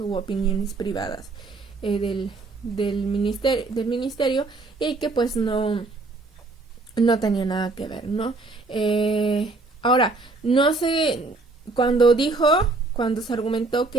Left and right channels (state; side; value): quieter; left; 3.5 dB